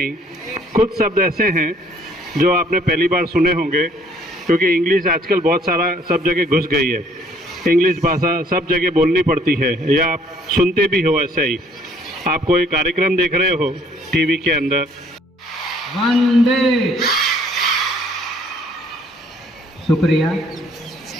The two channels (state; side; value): normal; both; correlation 0.61